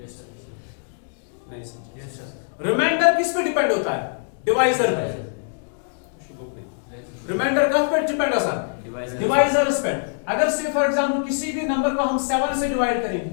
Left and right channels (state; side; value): silent; right; digital silence